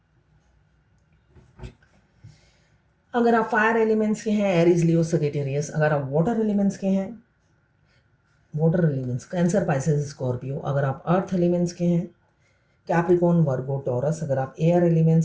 अगर आप फायर एलिमेंट्स के हैं, एरीज लियो सजिटेरियस। अगर आप वाटर एलिमेंट्स के हैं, water elements cancer Pisces Scorpio. अगर आप अर्थ एलिमेंट्स के हैं, कैप्रिकॉर्न वर्गो टॉरस। अगर आप एयर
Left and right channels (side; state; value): both; identical; correlation 1.00